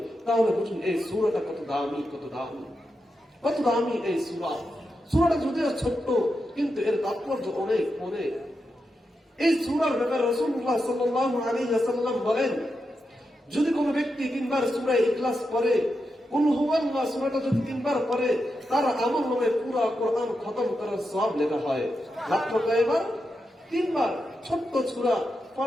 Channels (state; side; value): normal; both; correlation 0.87